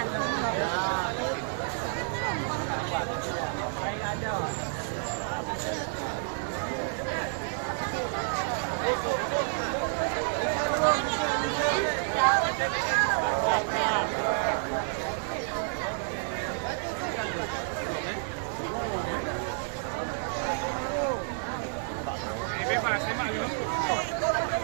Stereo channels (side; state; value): left; silent; digital silence